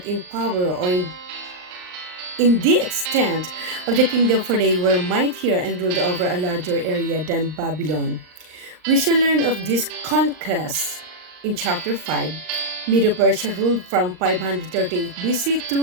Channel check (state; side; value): late; left; 39 ms